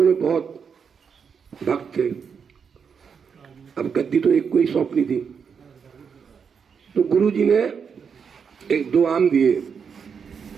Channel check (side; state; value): left; quieter; 6.5 dB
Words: बहुत भक्त थे। अब गद्दी तो एक को ही सौंपनी थी। तो गुरु जी ने एक दो आम दिए